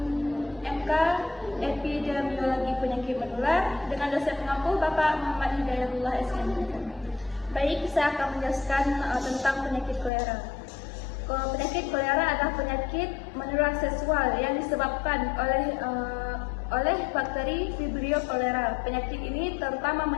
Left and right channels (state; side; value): drops out; right; at 10.1 s